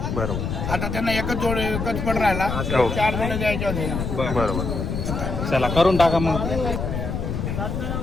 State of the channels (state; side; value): noise; left; rumble, 3 dB below the sound